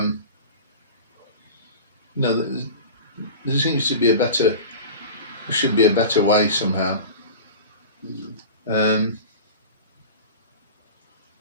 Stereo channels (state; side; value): inverted; both; correlation -0.33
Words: know, there seems to be should be a better way somehow.